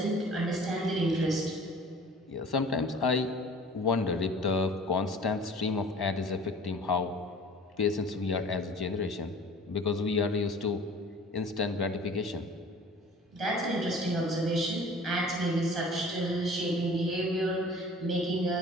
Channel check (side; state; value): both; normal; correlation 0.46